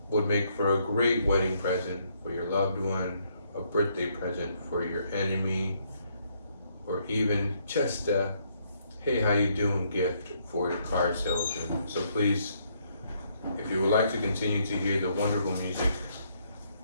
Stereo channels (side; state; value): both; inverted; correlation -0.71